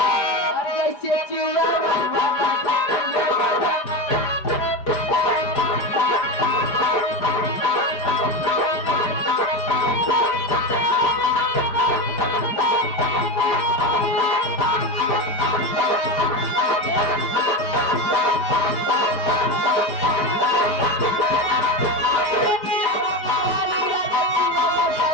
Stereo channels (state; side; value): late; right; 4.8 ms